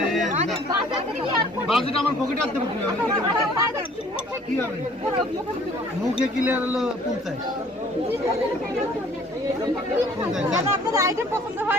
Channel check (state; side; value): normal; both; correlation 0.55